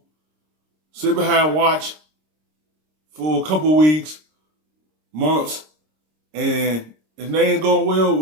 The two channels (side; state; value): left; late; 26 ms